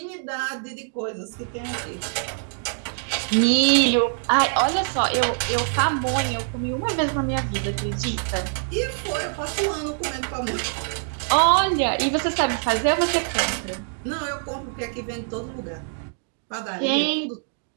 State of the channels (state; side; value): silent; left; 62 dB below the other